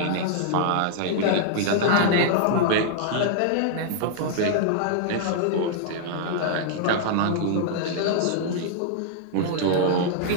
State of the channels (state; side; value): different; both; correlation -0.01